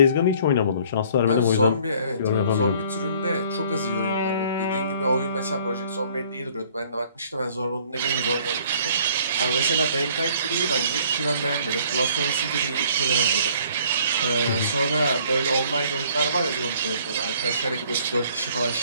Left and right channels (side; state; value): both; inverted; correlation -0.57